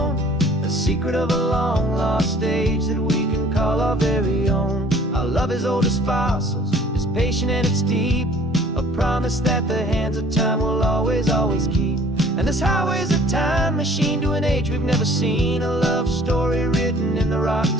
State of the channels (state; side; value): normal; both; correlation 0.53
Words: a secret of a long lost age that we can call our very own. Our love is old as fossils, it's patient and it's deep, a promise that the hands of time will always, always keep. And this highway's a time machine to an age we've never seen, a love story written in the